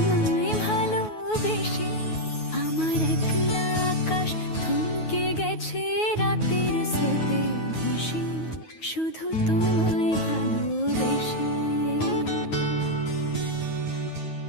ভালোবেসে। আমার একলা আকাশ থমকে গেছে রাতের স্রোতে ভেসে, শুধু তোমায় ভালোবেসে।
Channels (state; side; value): late; right; 9.4 ms